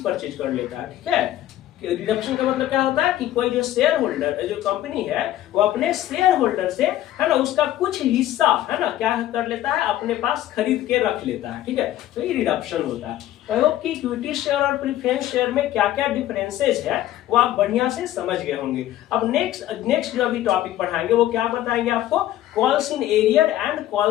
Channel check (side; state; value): right; quieter; 13.5 dB